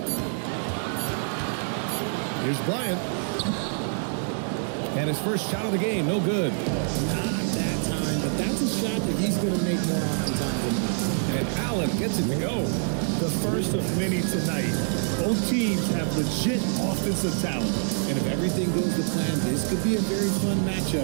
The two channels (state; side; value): silent; left; 61 dB below the other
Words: Here's Bryant. And his first shot of the game, no good. Not that time, but that's a shot that he's going to make more often times than not. And Allen gets it to go. The first of many tonight. Both teams have legit offensive talent. And if everything goes to plan, this could be a very fun